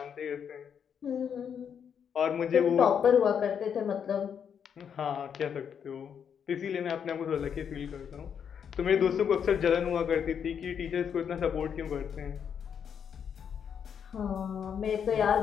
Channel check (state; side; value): quieter; right; 7.7 dB